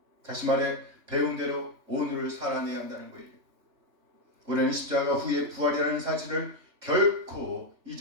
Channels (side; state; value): left; late; 3.3 ms